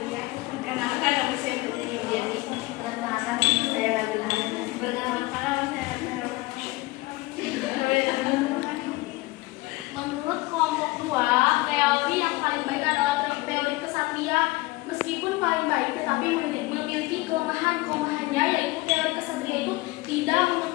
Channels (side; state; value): right; quieter; 21.2 dB